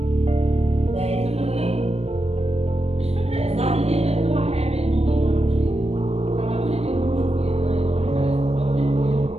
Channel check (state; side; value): late; left; 0.30 ms